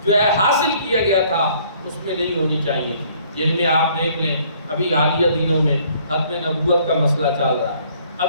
جو ہے حاصل کیا گیا تھا اس میں نہیں ہونی چاہیے تھی۔ جن میں آپ دیکھ لیں ابھی حالیہ دنوں میں ختم نبوت کا مسئلہ چل رہا ہے،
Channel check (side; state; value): both; inverted; correlation -0.60